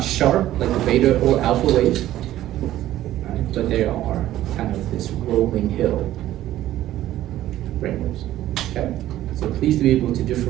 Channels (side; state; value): left; quieter; 13.8 dB